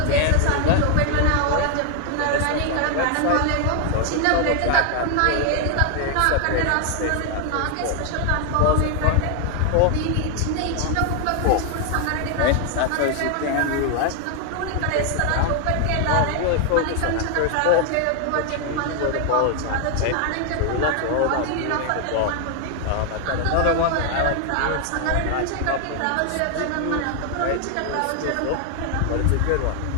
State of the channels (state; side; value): different; both; correlation 0.00